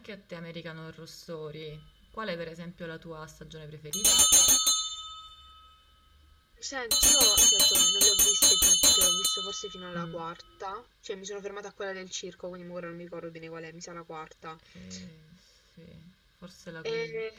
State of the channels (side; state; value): both; identical; correlation 1.00